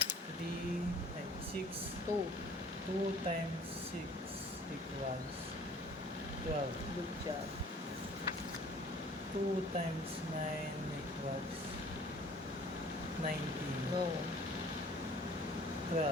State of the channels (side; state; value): both; normal; correlation 0.51